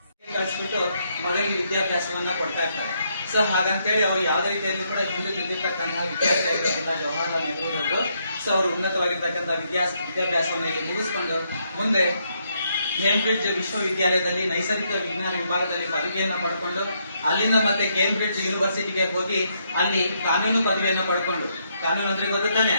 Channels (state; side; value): inverted; both; correlation -0.76